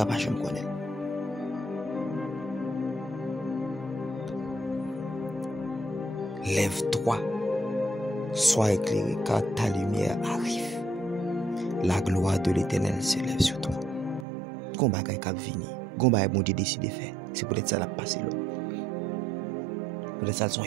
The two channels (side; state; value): left; drops out; at 14.2 s